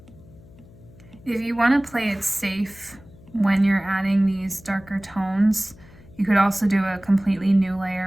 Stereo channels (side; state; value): left; noise; hum, 23 dB below the sound